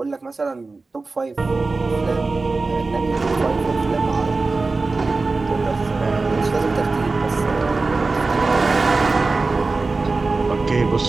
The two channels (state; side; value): quieter; left; 3.7 dB